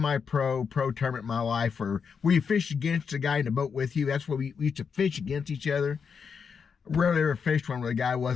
pro tournament in my life where you fish against the guy in the boat with you. That's where we used to fish against each other. Rarely ever fished one where the guy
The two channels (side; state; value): right; quieter; 6.2 dB